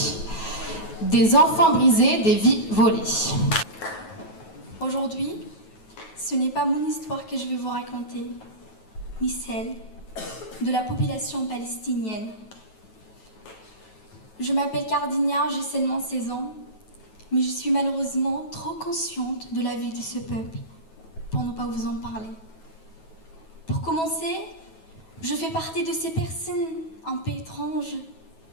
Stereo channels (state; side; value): late; right; 9.2 ms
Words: Des enfants brisés, des vies volées. Aujourd'hui, ce n'est pas mon histoire que je vais vous raconter, ni celle de la population palestinienne. Je m'appelle Cardina, j'ai seulement 16 ans, mais je suis malheureusement trop consciente de la vie de ce peuple pour ne pas vous en parler. Pour commencer, je fais partie de ces personnes un peu étranges